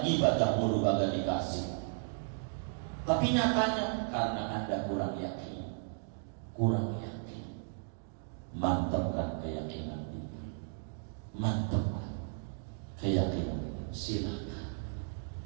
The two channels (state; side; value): silent; left; digital silence